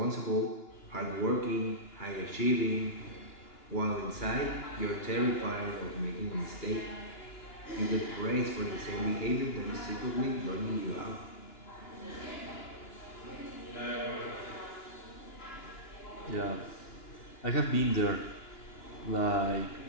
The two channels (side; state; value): right; late; 2.9 ms